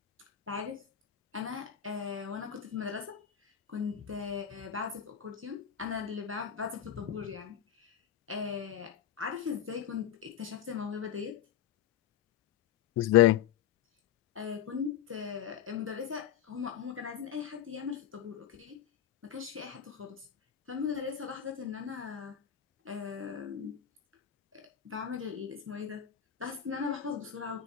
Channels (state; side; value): quieter; right; 9.7 dB